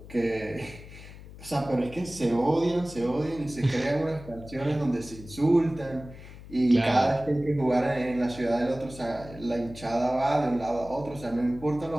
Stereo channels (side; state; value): left; noise; hum, 16 dB below the sound